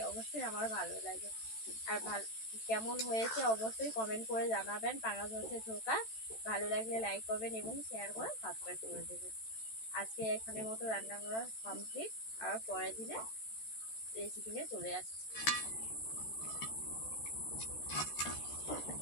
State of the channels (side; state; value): right; late; 13 ms